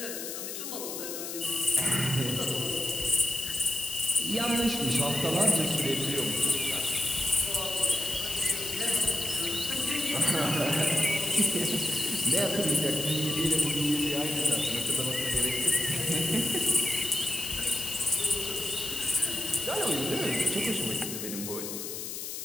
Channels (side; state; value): left; noise; hiss, 6 dB below the sound